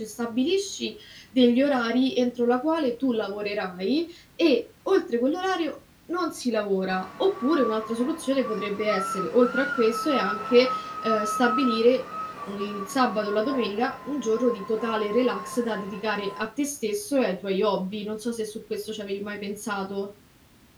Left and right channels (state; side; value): identical; both; correlation 1.00